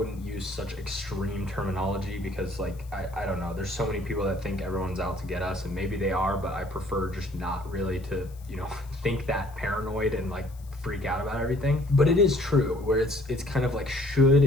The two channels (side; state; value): left; noise; hiss, 26 dB below the sound